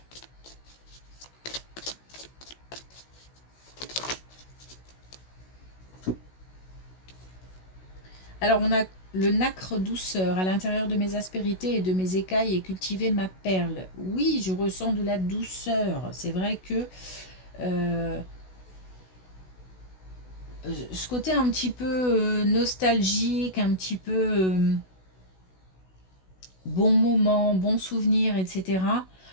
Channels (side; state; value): right; late; 16 ms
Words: Alors, on a le nacre douceur à l'intérieur de mes aspérités et de mes écailles et cultiver ma perle. Oui, je ressens de la douceur. C'est vrai que ce côté un petit peu nostalgique, un petit peu bon moment, bon souvenir, etc.